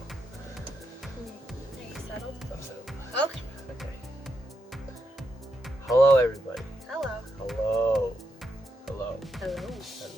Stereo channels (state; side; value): normal; both; correlation 0.82